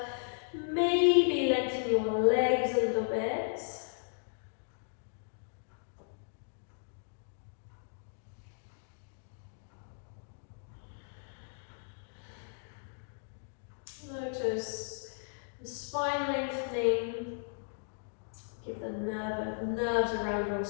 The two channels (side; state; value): right; silent; digital silence